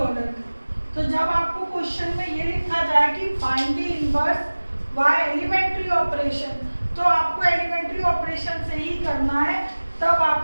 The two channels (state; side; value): inverted; both; correlation -1.00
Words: का। तो जब आपको क्वेश्चन में ये लिखा जाए कि find the inverse by elementary operation, तो आपको एलिमेंट्री ऑपरेशन से ही करना है, तब